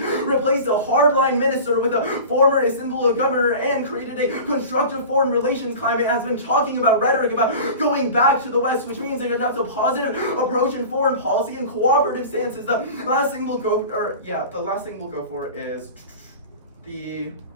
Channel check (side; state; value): both; inverted; correlation -0.35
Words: replaced a hardline minister with a former Istanbul governor and created a constructive foreign relations climate, has been talking about rhetoric about going back to the West, which means that that's a positive approach in foreign policy and cooperative stances. The last thing we'll go for is